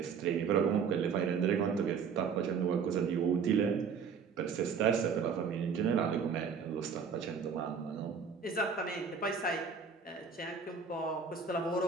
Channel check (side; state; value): left; quieter; 6.1 dB